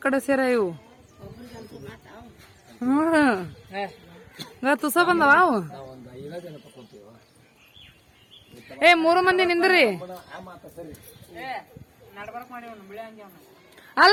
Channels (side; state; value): both; identical; correlation 1.00